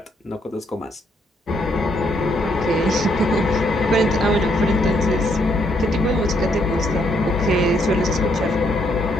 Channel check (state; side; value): normal; both; correlation 0.73